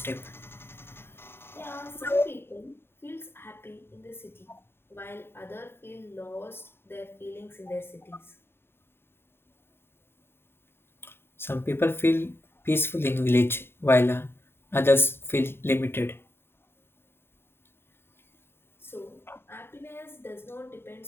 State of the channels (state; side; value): late; right; 0.11 ms